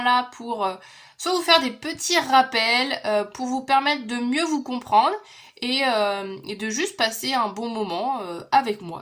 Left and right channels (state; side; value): identical; both; correlation 1.00